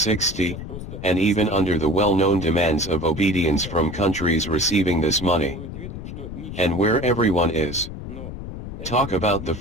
and even under the well-known demands of obedience from countries receiving this money. And where everyone is. Talk about the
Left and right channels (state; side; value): noise; left; rumble, 9 dB below the sound